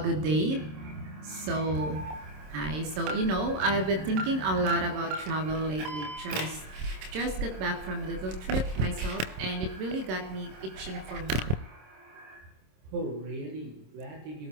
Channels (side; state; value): left; late; 26 ms